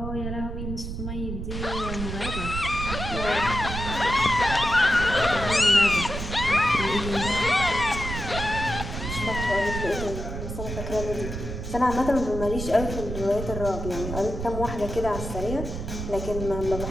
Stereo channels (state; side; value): noise; right; rumble, 6 dB below the sound